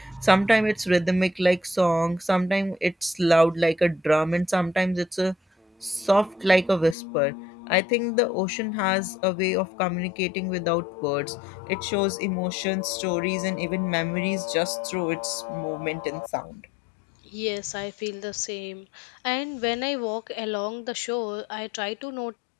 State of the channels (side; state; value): right; drops out; at 7.0 s